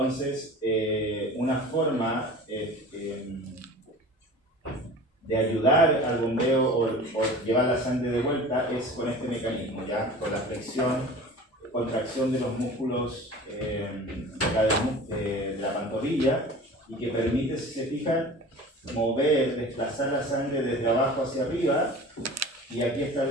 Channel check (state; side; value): normal; both; correlation 0.39